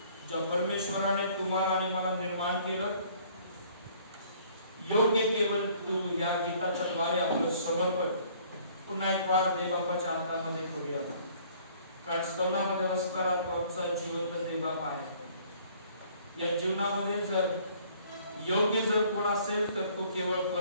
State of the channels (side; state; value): both; inverted; correlation -0.57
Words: ज्या परमेश्वराने तुम्हाला आणि मला निर्माण केलं, योग्य केवळ तू या गीताच्या द्वारे आपलं समर्पण पुन्हा एक वार देवबापाच्या हातामध्ये करूया. कारण स्तवनामध्ये असणारा तो आमचा जिवंत देवबाप आहे. या जीवनामध्ये जर योग्य जर कोण असेल तर तो केवळ